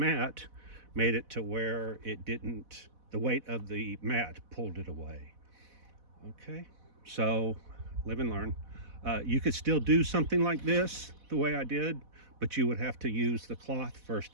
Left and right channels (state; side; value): late; left; 4.1 ms